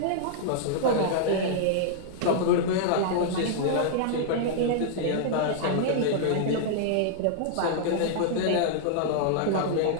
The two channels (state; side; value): different; both; correlation -0.01